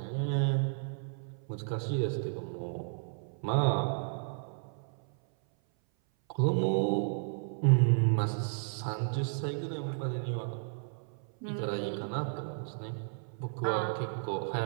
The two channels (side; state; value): left; silent; 56 dB below the other